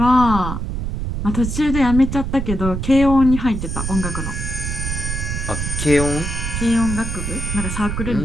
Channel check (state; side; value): noise; right; rumble, 3 dB below the sound